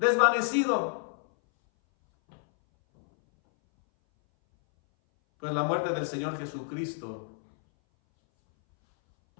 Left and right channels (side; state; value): right; silent; 59 dB below the other